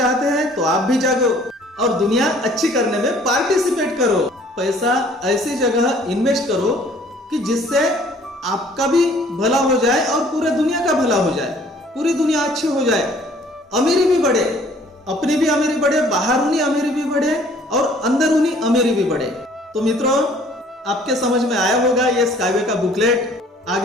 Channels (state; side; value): normal; both; correlation 0.56